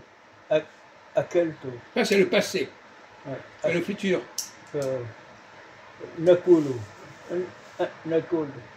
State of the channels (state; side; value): identical; both; correlation 1.00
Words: Akelto. Ça, c'est le passé. Ouais. C'est le futur. Nakulu. Nakulu.